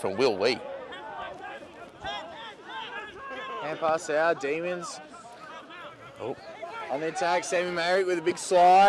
Will Lee. Hand pass out, Demons. Oh. On the attack, Sammy Merrick with a big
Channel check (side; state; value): both; identical; correlation 1.00